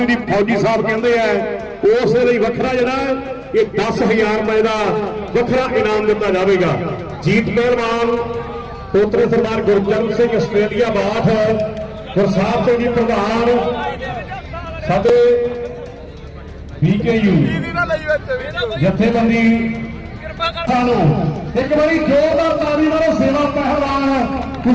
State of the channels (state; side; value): identical; both; correlation 1.00